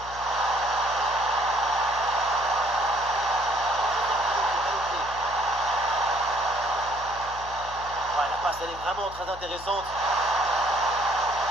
Ouais, la passe elle est vraiment très intéressante.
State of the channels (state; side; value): noise; left; hum, 16 dB below the sound